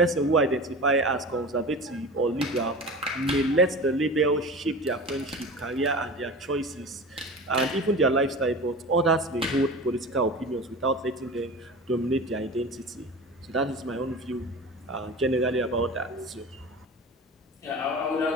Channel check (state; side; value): normal; both; correlation 0.33